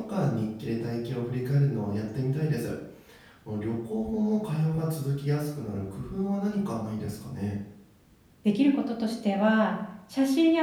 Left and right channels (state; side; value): identical; both; correlation 1.00